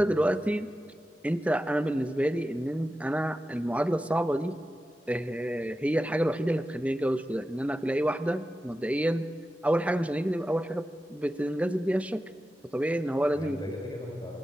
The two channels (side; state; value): both; normal; correlation 0.92